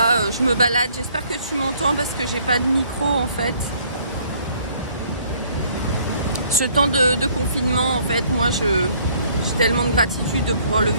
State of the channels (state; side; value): inverted; both; correlation -0.61